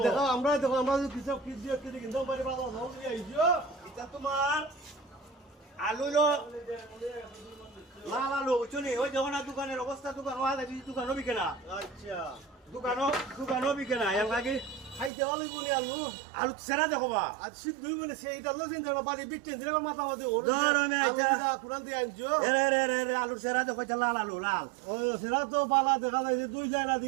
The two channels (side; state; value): left; drops out; at 15.1 s